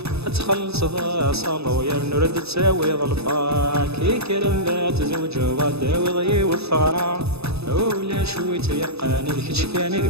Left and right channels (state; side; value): late; left; 0.79 ms